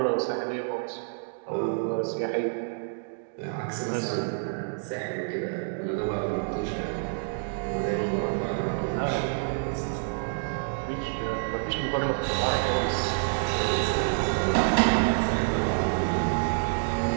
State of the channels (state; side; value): silent; left; digital silence